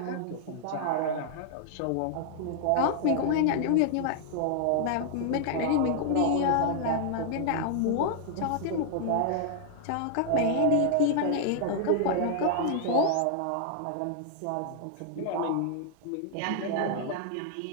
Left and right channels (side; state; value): both; different; correlation -0.01